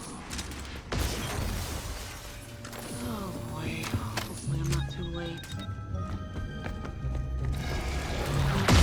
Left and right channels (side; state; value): both; identical; correlation 1.00